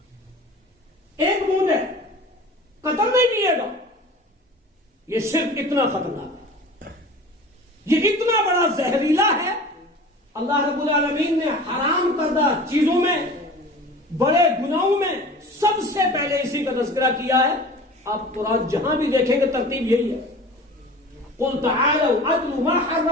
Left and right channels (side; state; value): both; normal; correlation 0.40